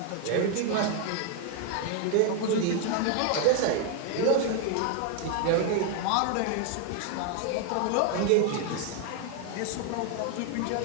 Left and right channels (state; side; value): different; both; correlation 0.00